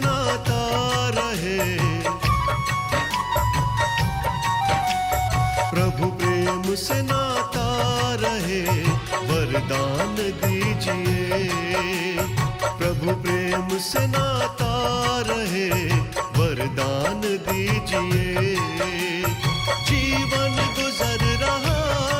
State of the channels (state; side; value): identical; both; correlation 1.00